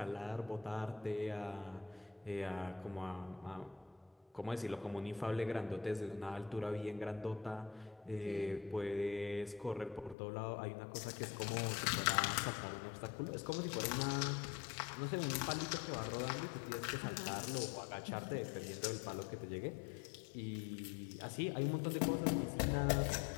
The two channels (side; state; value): right; drops out; at 10.2 s